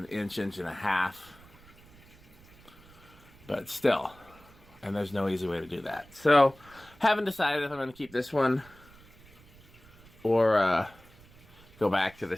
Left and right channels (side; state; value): right; noise; rumble, 25 dB below the sound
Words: inch, inch and a half, but still, and there's no easy way to do that. So, haven't decided if I'm going to keep this one or go back to the